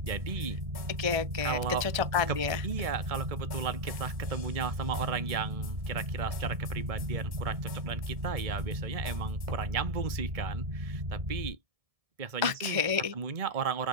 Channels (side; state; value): left; late; 1.7 ms